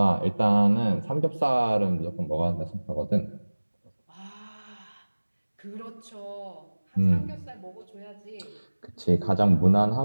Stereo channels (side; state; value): both; inverted; correlation -1.00